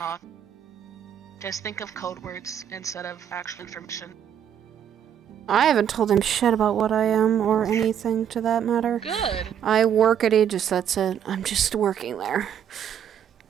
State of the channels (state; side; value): quieter; left; 9.1 dB